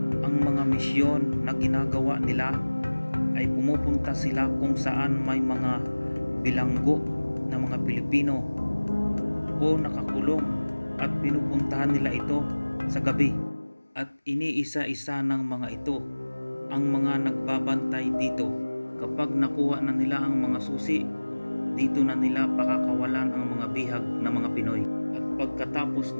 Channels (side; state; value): both; inverted; correlation -1.00